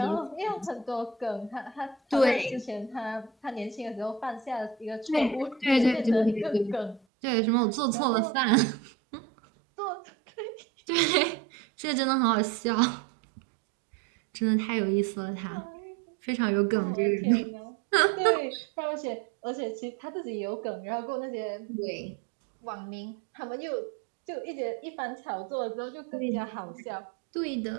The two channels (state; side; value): drops out; left; at 7.0 s